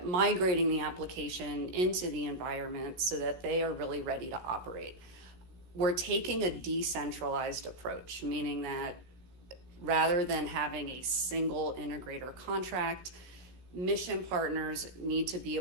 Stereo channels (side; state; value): left; late; 16 ms